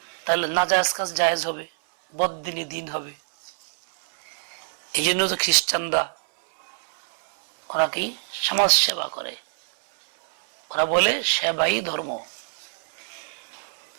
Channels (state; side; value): silent; left; 62 dB below the other